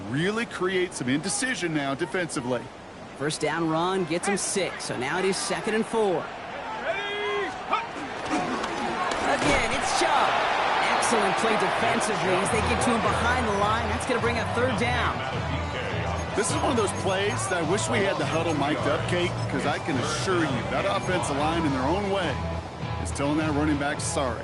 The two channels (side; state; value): both; identical; correlation 1.00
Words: really create some indecision now defensively. First down run gets him 6, so now it is 2nd and 4. Again, it's Chubb. Excellent play defensively as they get to him behind the line. That's going to bring up 3rd down. This is one of those plays that I wish we had the huddle mic'd up, Kate, because I can assure you that offensive line in their own way is telling that running back, sorry,